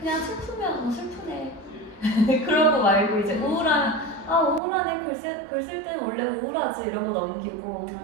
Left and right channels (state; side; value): drops out; left; at 4.6 s